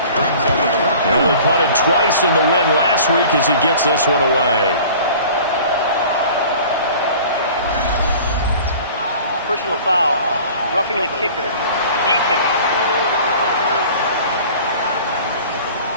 Brings up a fourth. They only punted twice in the win last week as he gets this one away. Personal foul, roughing the kicker, defense.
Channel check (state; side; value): inverted; both; correlation -0.45